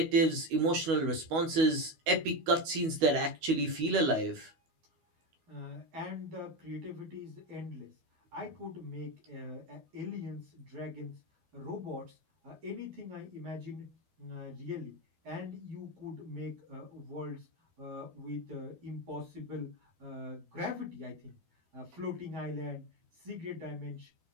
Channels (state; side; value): late; left; 12 ms